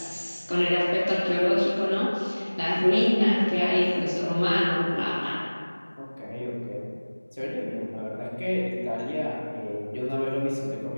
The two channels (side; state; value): both; inverted; correlation -1.00